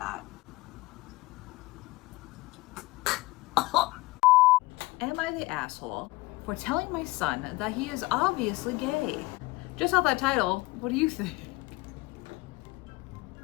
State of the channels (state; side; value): quieter; right; 21.5 dB